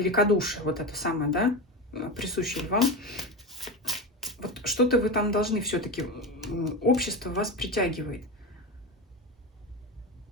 вот это самое, да, присущее вам. Вот что-то вы там должны все-таки, общество вас притягивает.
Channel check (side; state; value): both; normal; correlation 0.21